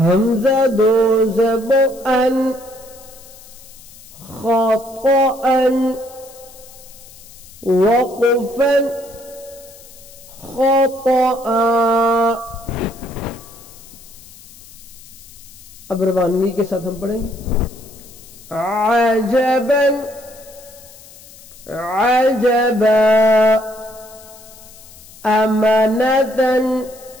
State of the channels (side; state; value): left; noise; hiss, 21 dB below the sound